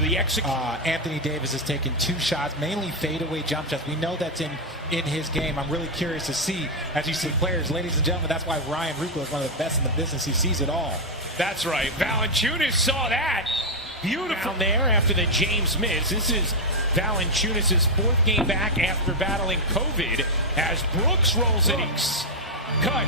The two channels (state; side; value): normal; both; correlation 0.01